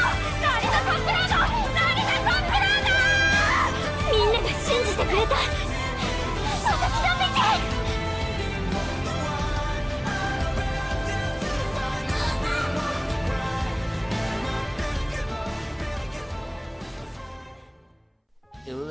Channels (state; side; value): identical; both; correlation 1.00